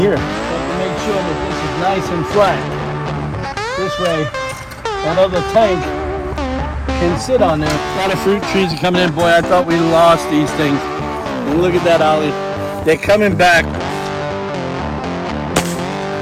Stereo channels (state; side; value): identical; both; correlation 1.00